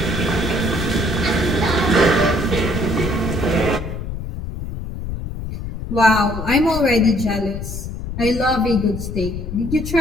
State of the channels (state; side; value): noise; left; rumble, 7 dB below the sound